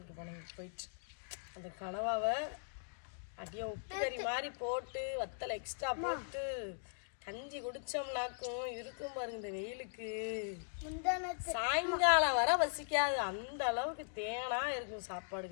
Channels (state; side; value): silent; right; digital silence